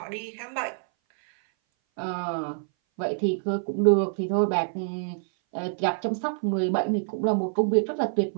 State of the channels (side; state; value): left; silent; 59 dB below the other